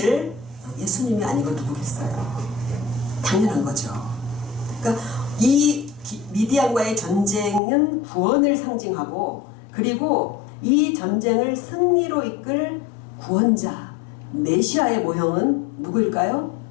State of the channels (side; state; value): right; drops out; at 7.6 s